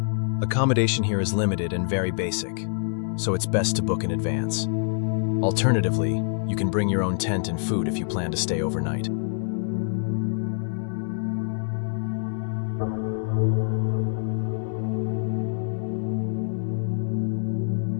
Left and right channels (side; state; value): right; silent; 61 dB below the other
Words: Accommodation here is limited and very basic, so it's best to book in advance. Alternatively, you can bring your own tent and food if you plan to stay overnight.